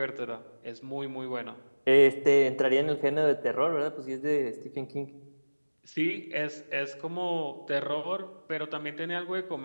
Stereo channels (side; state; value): both; inverted; correlation -1.00